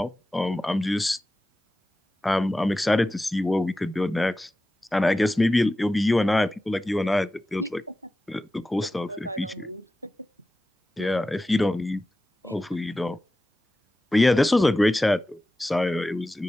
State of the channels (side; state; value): both; normal; correlation 0.94